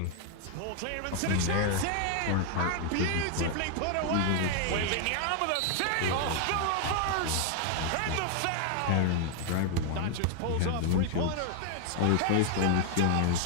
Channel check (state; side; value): different; both; correlation 0.00